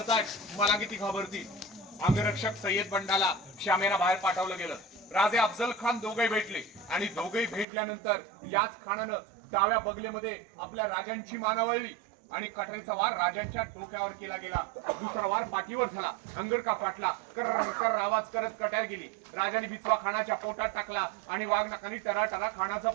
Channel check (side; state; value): left; drops out; at 7.7 s